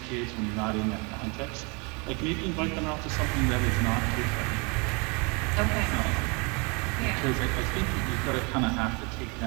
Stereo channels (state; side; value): quieter; left; 31.1 dB